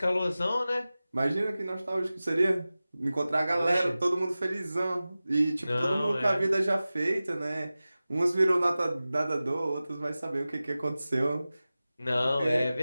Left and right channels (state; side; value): inverted; both; correlation -0.96